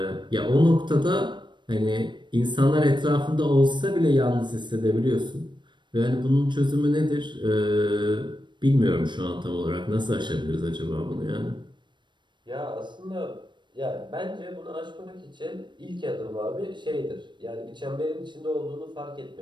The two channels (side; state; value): left; late; 0.22 ms